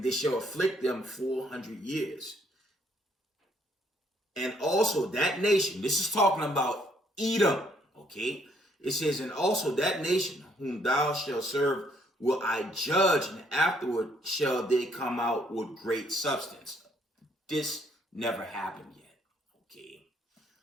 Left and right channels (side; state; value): both; normal; correlation 0.68